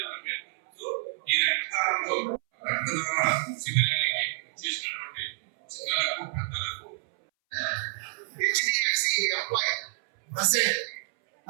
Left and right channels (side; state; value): left; silent; 59 dB below the other